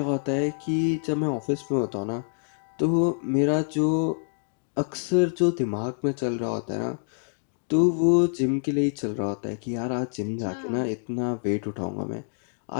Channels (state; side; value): silent; right; digital silence